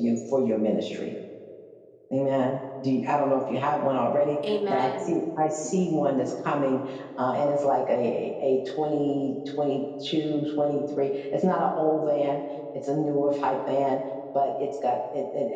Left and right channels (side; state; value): both; identical; correlation 1.00